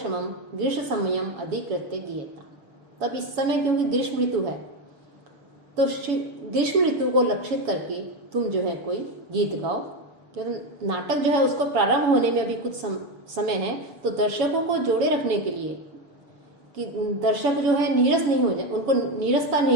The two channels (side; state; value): left; late; 7.0 ms